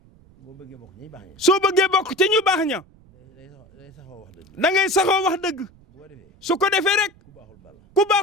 soo bëggee bokk ci ñu baax ña da ngay saxoo wax dëgg su ko defee rek ku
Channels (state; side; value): noise; right; rumble, 28 dB below the sound